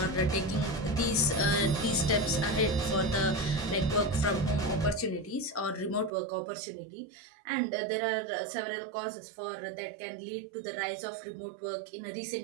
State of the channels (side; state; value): left; drops out; at 6.1 s